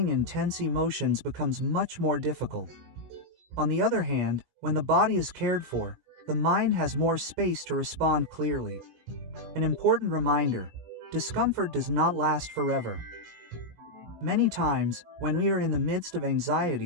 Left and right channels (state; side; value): late; left; 19 ms